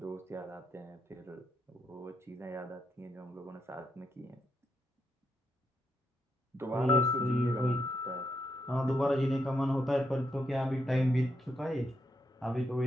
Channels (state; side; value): normal; both; correlation 0.80